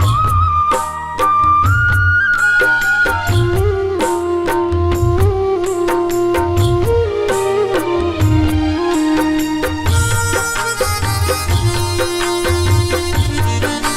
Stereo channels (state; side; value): identical; both; correlation 1.00